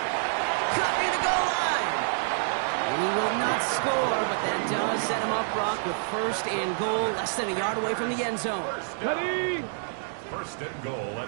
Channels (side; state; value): left; silent; digital silence